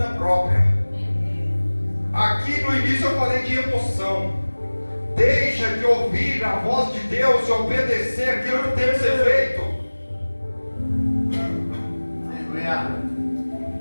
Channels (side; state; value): both; inverted; correlation -1.00